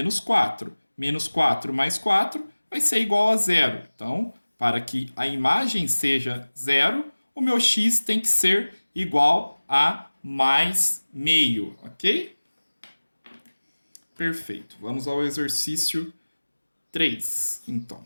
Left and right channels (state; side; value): inverted; both; correlation -1.00